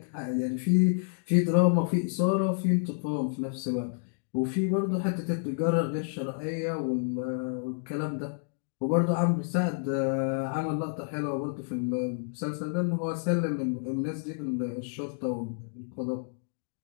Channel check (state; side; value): silent; right; digital silence